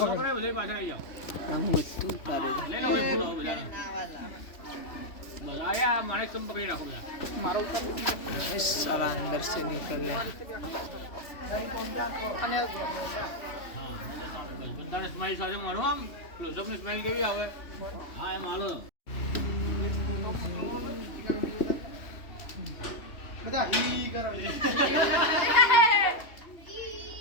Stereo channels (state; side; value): late; right; 3.1 ms